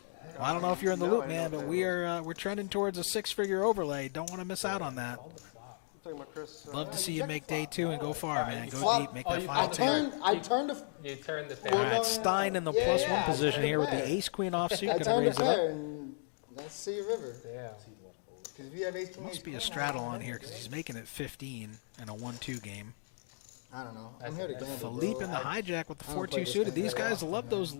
Well, I don't know if you're in the loop, man, but we're trending towards a 6-figure overlay. Don't want to miss out on that. Talking about Chris. Love to see you make day 2 and go far, man. Go deep, make that final table. I turned the. You turned the All pair. right, Stein in the +1 position here with the ace-queen offsuit. I Gonna turned raise the it up. pair and let's see a river. Yeah. Because if you have ace king, Must be a straddle on here because he's making it 15 in a 1-2 game. I don't know. I'm here to gamble. Philippe in the hijack with the 4-2 suited. These guys love those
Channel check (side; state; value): right; silent; digital silence